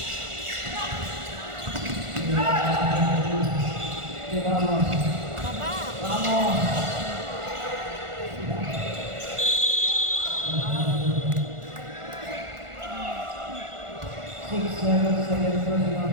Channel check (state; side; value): late; left; 1.4 ms